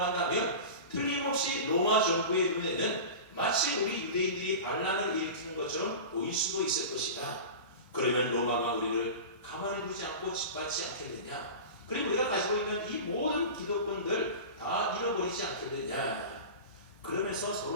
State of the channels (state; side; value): inverted; both; correlation -0.30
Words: 틀림없이 로마 정부의 눈에는 마치 우리 유대인들이 반란을 일으키는 것처럼 보일 수도 있을 것이다. 그러면 로마가 우리를 가만히 두지 않고 짓밟지 않겠느냐. 그리고 우리가 가지고 있는 이 모든 기득권들 다 잃어버리지 않겠느냐. 그러면서